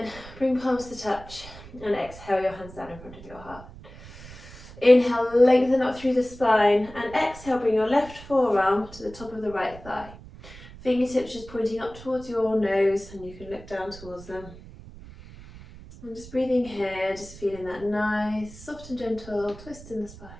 bring palms to touch, and exhale your hands down in front of your heart. Inhale, lengthen up through the spine, and exhale, bring your left forearm to the top of the right thigh. Fingertips just pointing up towards your nose, and you can look down towards them. And just breathing here, just feeling that nice, soft and gentle twist in the spine.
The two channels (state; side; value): noise; right; rumble, 17 dB below the sound